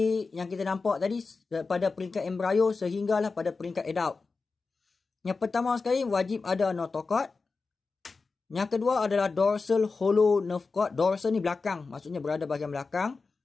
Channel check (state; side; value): quieter; right; 4.3 dB